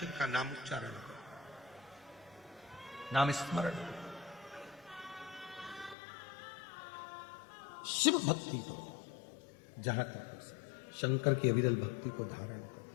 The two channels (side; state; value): right; drops out; at 6.0 s